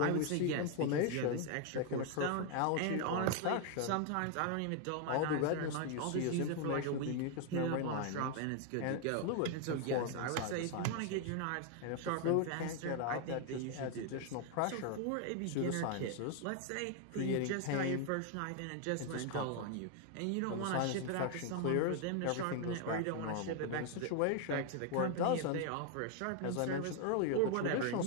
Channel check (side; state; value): both; different; correlation 0.00